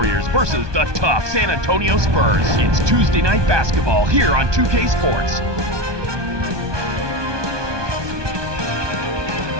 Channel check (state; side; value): late; left; 1.2 ms